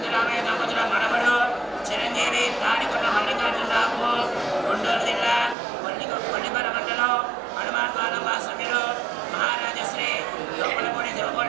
దంపతుల మనవడు చిరంజీవి తాడికొండ మల్లికార్జునరావుకు గుంటూరు జిల్లా కొల్లిపర మండలం హనుమాన్ పాలెం వాస్తవ్యులు మహారాజశ్రీ దొప్పలపూడి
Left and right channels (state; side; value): drops out; left; at 5.6 s